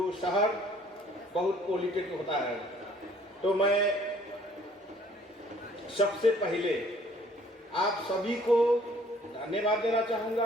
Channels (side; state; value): both; normal; correlation 0.58